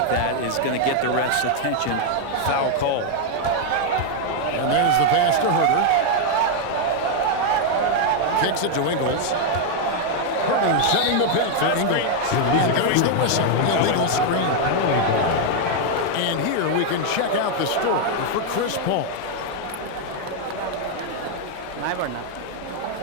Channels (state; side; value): different; both; correlation 0.00